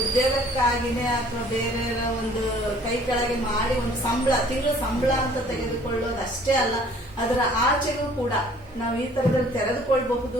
ಉದ್ಯೋಗಕ್ಕಾಗಿನೇ ಅಥವಾ ಬೇರೆಯವರ ಒಂದು ಕೈ ಕೆಳಗೆ ಮಾಡಿ ಒಂದು ಸಂಬಳ, ತಿಂಗಳು ಸಂಬಳ ಅಂತ ತೆಗೆದುಕೊಳ್ಳೋದು ಅಷ್ಟೇ ಅಲ್ಲ, ಅದರ ಆಚೆಗೂ ಕೂಡ ನಾವು ಈ ತರದಲ್ಲಿ ತೆರೆದುಕೊಳ್ಬಹುದು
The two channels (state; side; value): normal; both; correlation 0.55